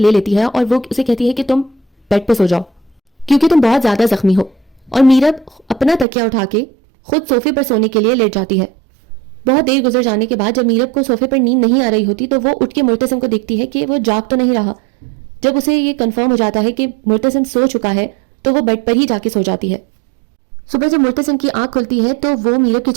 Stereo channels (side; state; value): left; drops out; at 6.1 s